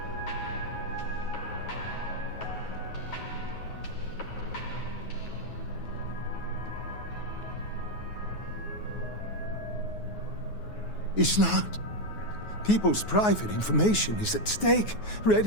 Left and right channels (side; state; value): right; late; 9.4 ms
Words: It's not. People's private information is at stake,